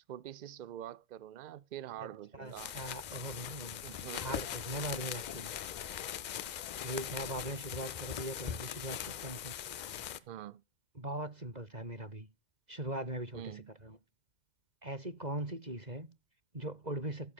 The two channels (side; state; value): left; late; 2.1 ms